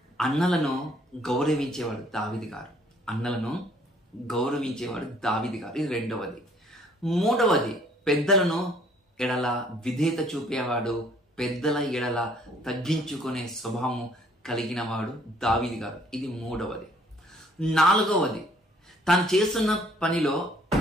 అన్నలను గౌరవించేవాడు దావీదు గారు. అన్నలను గౌరవించేవాడు దావీదు గారు. ఇది రెండవది. మూడవది, పెద్దలను ఎడల విధేయత చూపేవాడు, పెద్దల ఎడల తగ్గించుకునే స్వభావం కలిగిన వాడు దావీదు గారు. ఇది మూడవది. నాలుగవది, తాను చేస్తున్న పనిలో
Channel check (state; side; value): normal; both; correlation 0.60